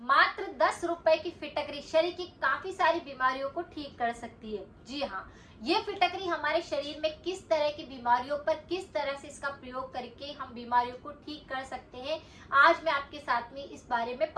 10 रुपए की फिटकरी शरीर की काफी सारी बीमारियों को ठीक कर सकती है। जी हाँ, ये फिटकरी हमारे शरीर में किस तरह की बीमारियों पर किस तरह से इसका प्रयोग करके हम बीमारियों को ठीक कर सकते हैं, आज मैं आपके साथ में इस बारे में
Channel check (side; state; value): both; identical; correlation 1.00